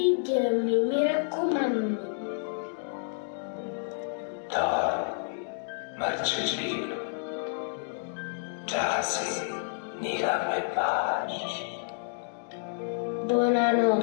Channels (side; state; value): right; silent; digital silence